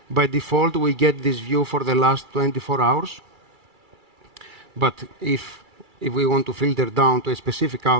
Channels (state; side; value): late; left; 2.3 ms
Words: By default, we get this view for the last 24 hours. But if we want to filter down to a specific